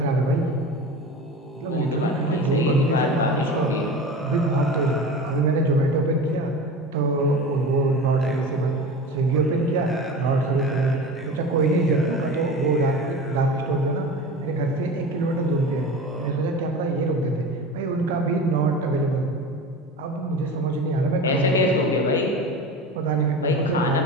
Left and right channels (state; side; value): normal; both; correlation 0.32